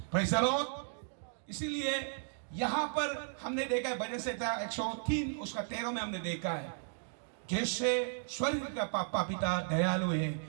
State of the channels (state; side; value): silent; left; digital silence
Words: Praise the Lord. इसीलिए यहां पर हमने देखा है भजन संहिता 103 उसका 13 में हमने देखा है, जैसे स्वर्ग का पापा पिता दयालु